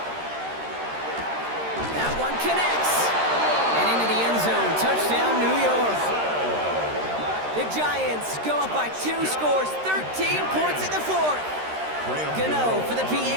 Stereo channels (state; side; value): late; left; 13 ms